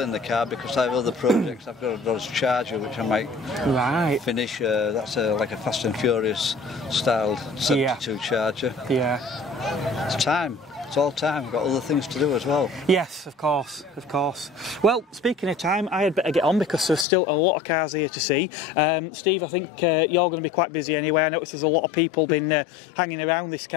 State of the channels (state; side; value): drops out; right; at 17.1 s